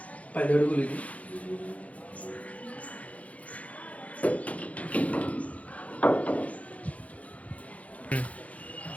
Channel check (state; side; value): late; right; 0.067 ms